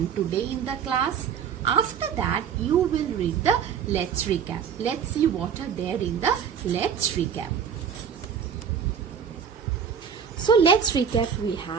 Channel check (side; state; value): left; quieter; 7.4 dB